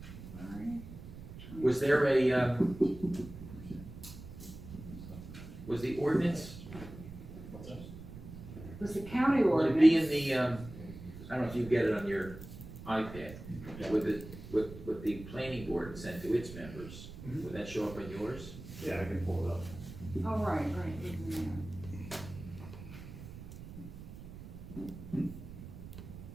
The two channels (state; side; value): noise; right; rumble, 13 dB below the sound